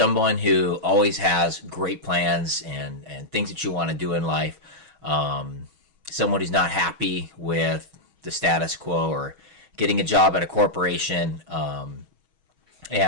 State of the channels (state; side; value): late; left; 6.3 ms